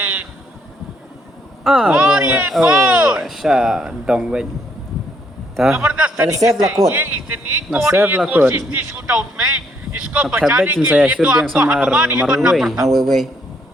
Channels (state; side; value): normal; both; correlation 0.71